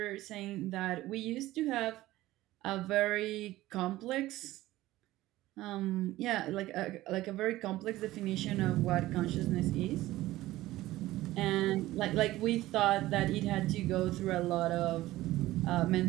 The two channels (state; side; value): quieter; left; 16.6 dB